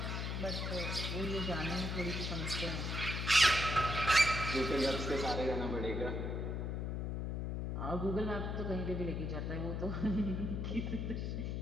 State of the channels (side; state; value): left; noise; hum, 2 dB below the sound